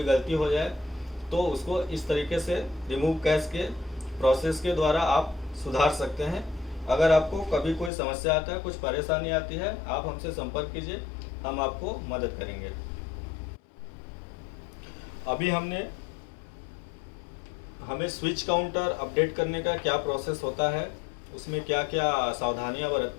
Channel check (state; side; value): drops out; right; at 7.9 s